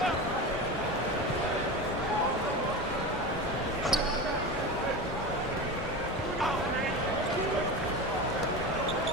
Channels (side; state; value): both; normal; correlation 0.25